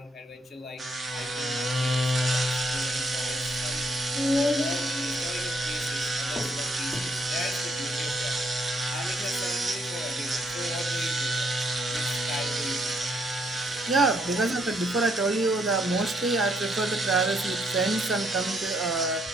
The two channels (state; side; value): normal; both; correlation 0.72